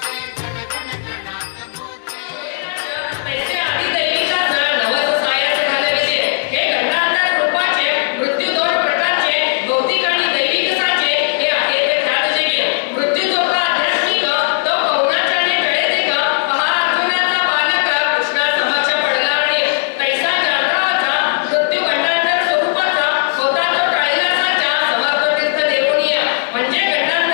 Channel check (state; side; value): silent; right; digital silence